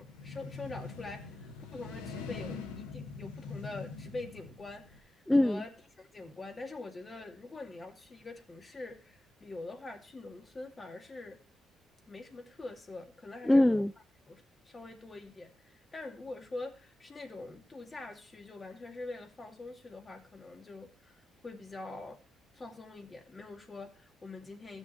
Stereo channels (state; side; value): normal; both; correlation 0.95